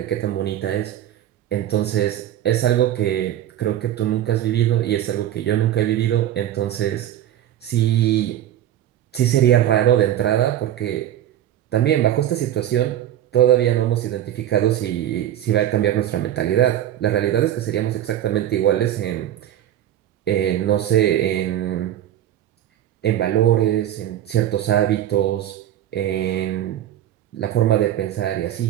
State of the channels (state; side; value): quieter; left; 11.8 dB